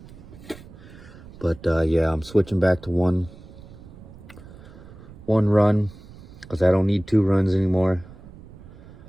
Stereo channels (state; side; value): noise; right; rumble, 18 dB below the sound